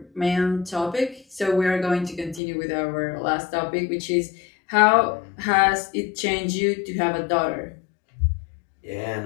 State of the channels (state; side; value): drops out; right; at 2.4 s